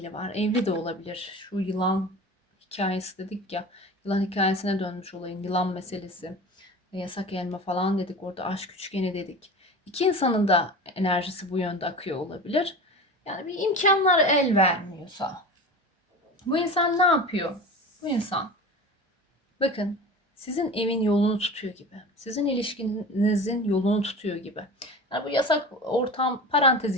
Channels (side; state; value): both; normal; correlation 0.33